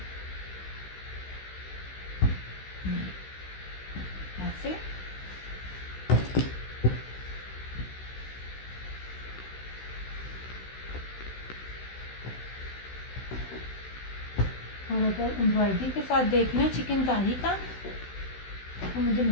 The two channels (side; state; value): right; late; 16 ms